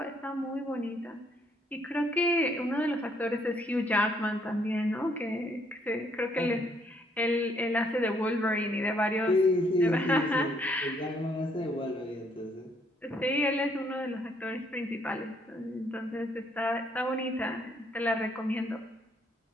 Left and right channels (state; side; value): normal; both; correlation 0.68